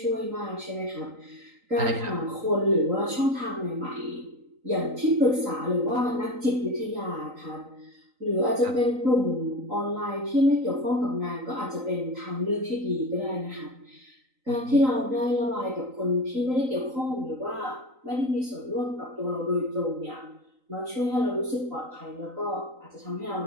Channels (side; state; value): left; late; 3.9 ms